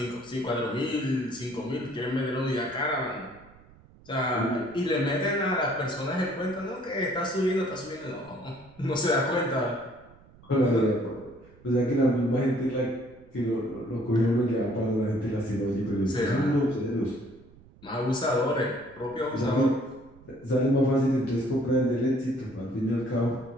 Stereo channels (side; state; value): right; noise; rumble, 25 dB below the sound